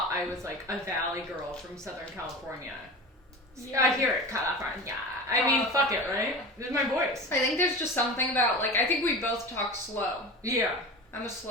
I was like a Valley girl from Southern California. Yeah. I hear it, California. I mean, fuck it, right? This is my voice. I think there's just something about, like, I think we both talk slow. Yeah. I'm a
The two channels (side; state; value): both; normal; correlation 0.31